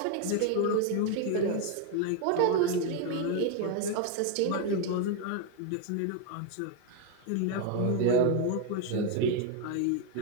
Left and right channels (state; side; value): different; both; correlation 0.01